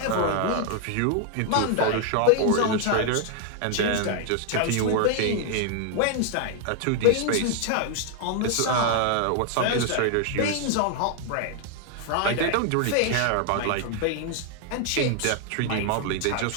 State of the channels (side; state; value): both; different; correlation 0.00